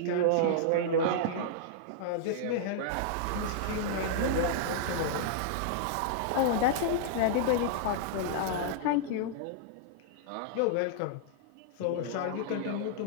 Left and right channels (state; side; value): different; both; correlation -0.02